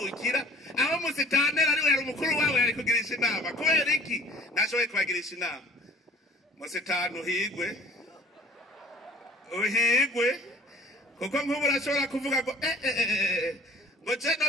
aho musitanteri ari we yari umukuru wabo yari kugirisha inama kubera iki ntashoboye kubagirisha inama musitani uhigwe kuko nk'ubu urashobora kuvuga ngo ngo je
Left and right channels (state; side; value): normal; both; correlation 0.51